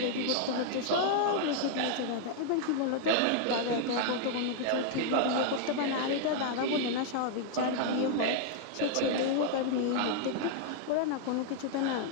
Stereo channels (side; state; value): both; different; correlation 0.00